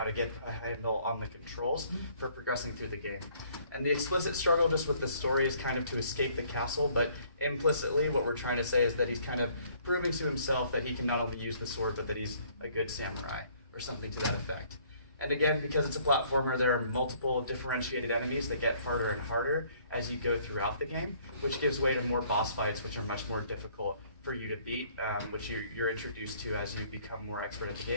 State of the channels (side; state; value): both; inverted; correlation -0.61